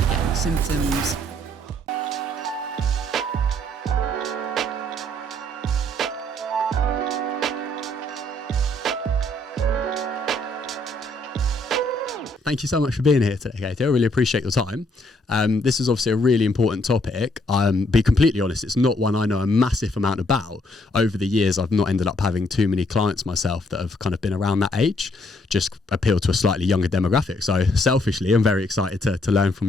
get any symptoms. Thank you so much for being here today, Katie. I really appreciate your time. This is obviously a really important topic. Be completely honest, it's not one I know a massive amount about. Over the years, I've not ended up having too many clients myself that have kind of been around that age, just appeal to a slightly younger demographic. So selfishly, I'm very excited to learn from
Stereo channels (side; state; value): both; normal; correlation 0.69